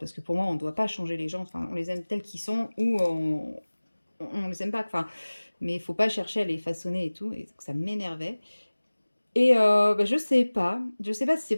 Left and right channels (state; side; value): inverted; both; correlation -1.00